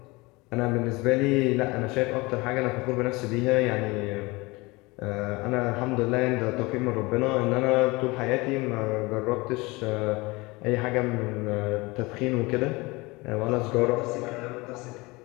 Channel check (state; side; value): quieter; right; 23.7 dB